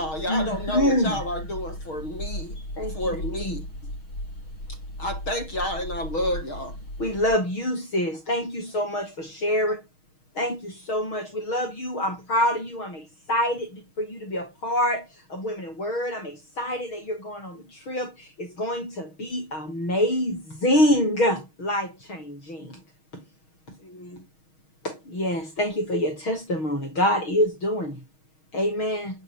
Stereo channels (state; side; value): late; right; 6.3 ms